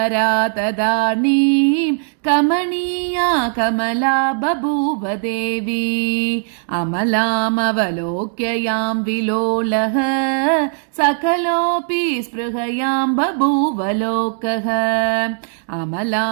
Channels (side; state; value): left; silent; digital silence